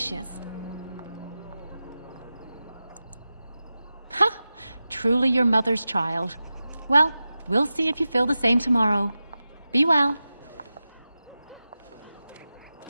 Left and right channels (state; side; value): inverted; both; correlation -0.94